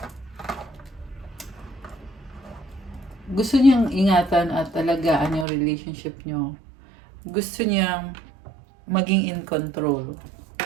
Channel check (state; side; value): drops out; left; at 5.5 s